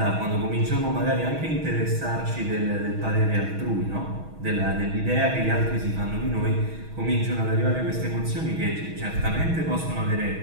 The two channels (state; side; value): late; left; 6.3 ms